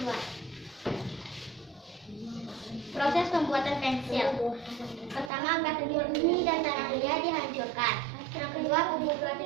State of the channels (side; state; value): left; drops out; at 5.3 s